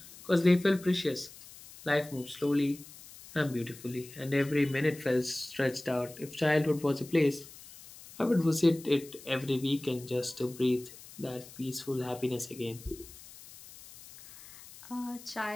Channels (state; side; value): noise; left; hiss, 18 dB below the sound